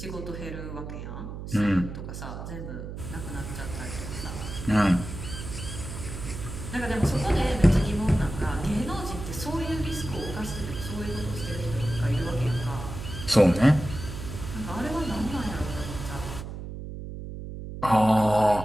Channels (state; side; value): noise; right; hum, 8 dB below the sound